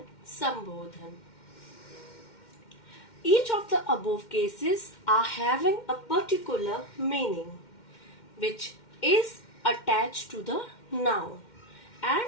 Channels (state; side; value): late; right; 2.1 ms